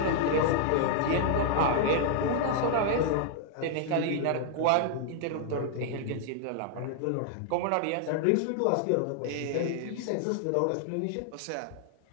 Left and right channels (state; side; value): different; both; correlation 0.00